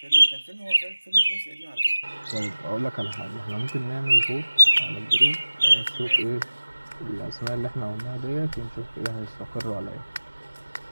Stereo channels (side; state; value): both; inverted; correlation -1.00